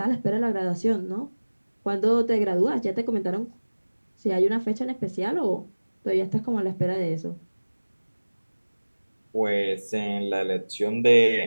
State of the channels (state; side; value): inverted; both; correlation -1.00